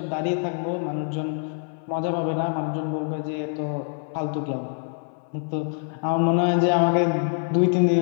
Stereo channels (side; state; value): right; silent; 56 dB below the other